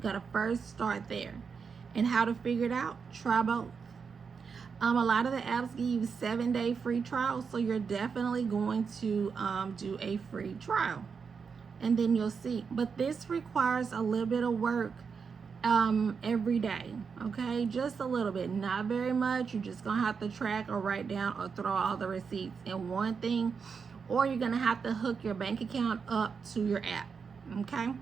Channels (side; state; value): left; quieter; 5.8 dB